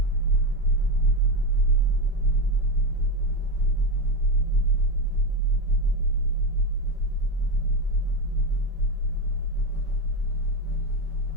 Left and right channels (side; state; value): right; late; 5.3 ms